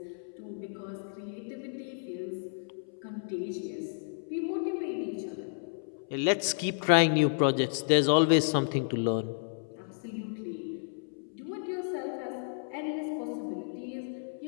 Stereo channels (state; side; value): silent; right; 57 dB below the other